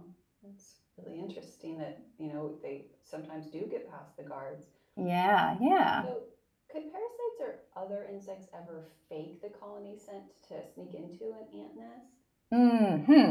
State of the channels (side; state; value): both; identical; correlation 1.00